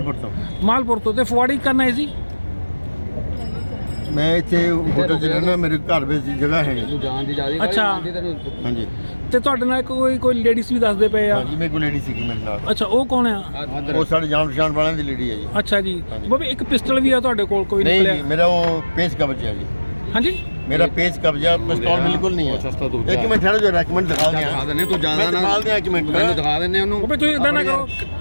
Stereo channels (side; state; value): both; inverted; correlation -1.00